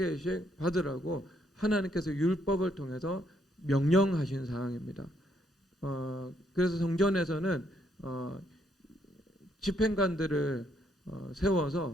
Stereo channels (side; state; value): both; normal; correlation 0.72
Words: 받으라고 하나님께서 율법을 통해서 명령하신 사항입니다. 그래서 성전에서는 집행관들을